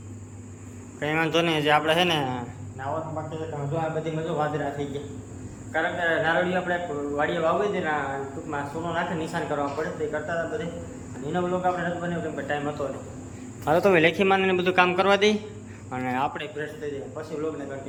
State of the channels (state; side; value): identical; both; correlation 1.00